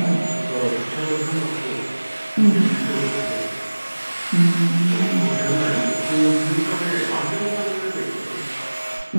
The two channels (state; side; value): inverted; both; correlation -1.00